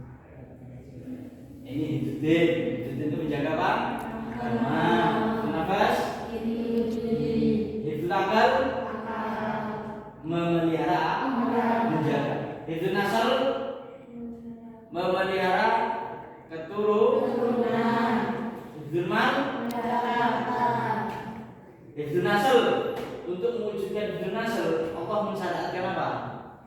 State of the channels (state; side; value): identical; both; correlation 1.00